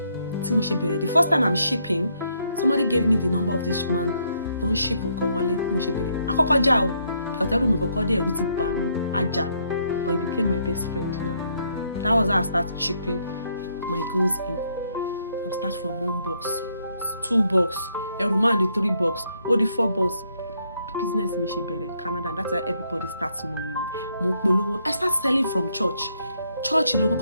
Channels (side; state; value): both; inverted; correlation -0.73